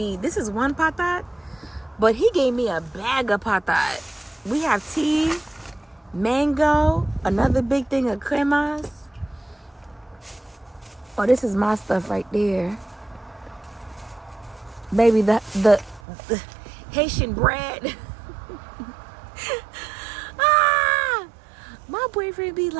this is one patat, but he gave me a bag of patat. We have tea, mango, another big thing of cremas. Oh, this is my stuff right there. Baby, the Haitian bread. My boyfriend be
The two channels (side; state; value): left; drops out; at 16.0 s